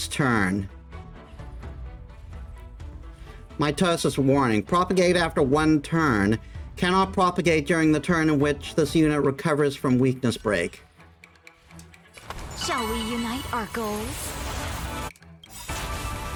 turn. Mitosis warning. Propagate after one turn. Cannot propagate during the turn in which this unit recovers from weakness break. Shall we unite our goals?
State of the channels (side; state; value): both; identical; correlation 1.00